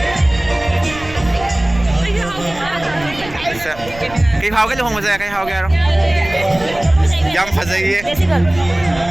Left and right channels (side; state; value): right; noise; rumble, 16 dB below the sound